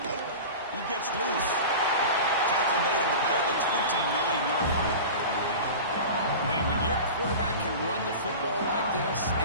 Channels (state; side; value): inverted; both; correlation -0.32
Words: He gets loose. Tackle made him at the 29-yard line. Man, when your quarterback can run the football like this, it